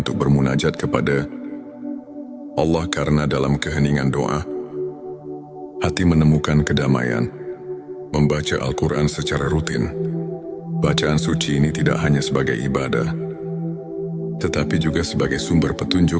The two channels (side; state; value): both; identical; correlation 1.00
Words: bermunajat kepada Allah, karena dalam keheningan doa, hati menemukan kedamaian. Membaca Al-Quran secara rutin. Bacaan suci ini tidak hanya sebagai ibadah, tetapi juga sebagai sumber petunjuk